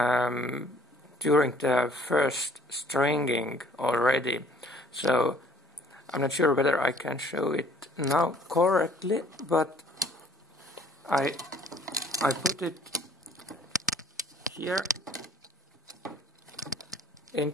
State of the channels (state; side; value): normal; both; correlation 0.57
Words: during the first stringing already. So I'm not sure whether I can show it now correctly, but I put it here